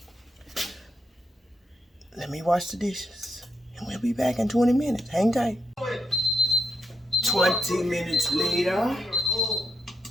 Let me wash the dishes. And we'll be back in 20 minutes. Hang tight. 20 minutes later.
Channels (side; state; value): both; normal; correlation 0.81